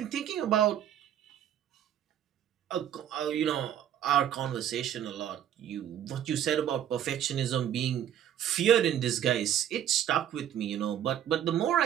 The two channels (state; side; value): quieter; left; 10.3 dB